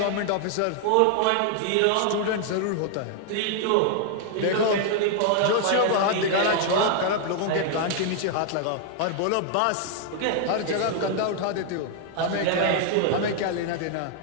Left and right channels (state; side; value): different; both; correlation 0.00